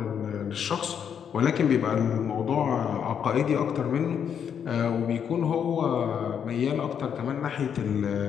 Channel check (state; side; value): quieter; right; 8.0 dB